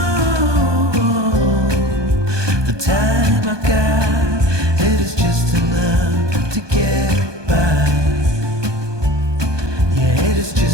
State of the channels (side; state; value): left; late; 1.2 ms